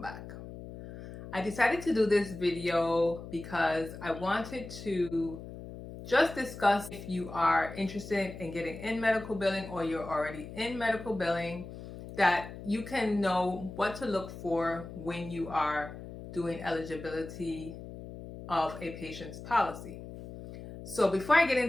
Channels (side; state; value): left; noise; hum, 12 dB below the sound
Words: I decided to do this video because I wanted to just discuss if you are interested in getting in medical billing or you're already in medical billing, that you can know what to look for when you are doing eligibility of a patient's policy. So before I get